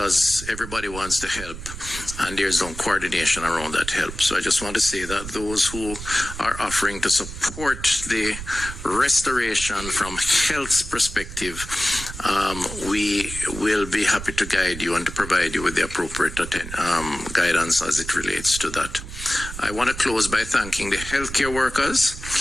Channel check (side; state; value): right; noise; rumble, 10 dB below the sound